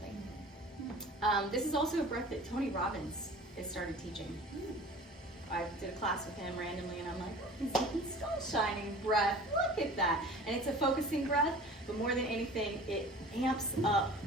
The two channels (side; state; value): both; normal; correlation 0.42